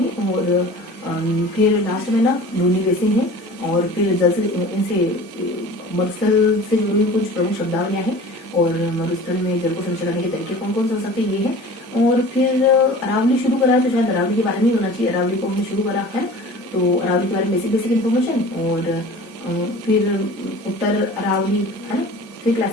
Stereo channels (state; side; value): normal; both; correlation 0.41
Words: और फिर लास्ट में ना लूनी बेसिन है और फिर जल से इनसे मरुस्थल से जुड़ी कुछ प्रमुख शब्दावलियां हैं और मरुस्थल में जल को संचय करने के तरीके कौन कौन से हो सकते हैं ये है। और फिर अरावली शुरू करा है तो शायद अरावली के बारे में ही होना चाहिए, अरावली को हमने शुरू करा है तो अरावली के बारे में बेसिक इन्फॉर्मेशन और फिर उत्तर अरावली है ना, फिर